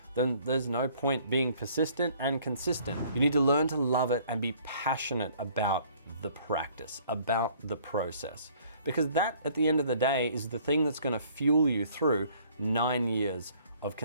then there's no point being persistent and consistent. You need to learn to love it and be passionate about the practice, about the process. Because that, at the end of the day, is the thing that's gonna fuel you through 9 years of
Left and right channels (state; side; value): inverted; both; correlation -0.58